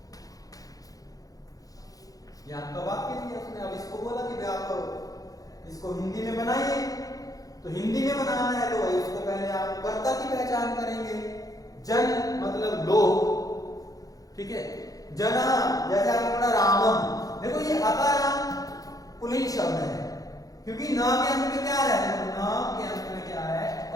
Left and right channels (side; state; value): right; late; 0.17 ms